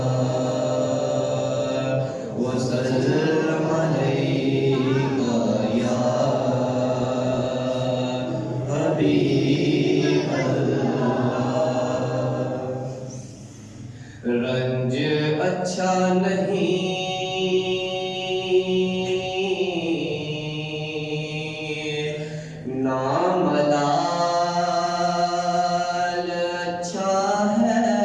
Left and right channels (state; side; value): identical; both; correlation 1.00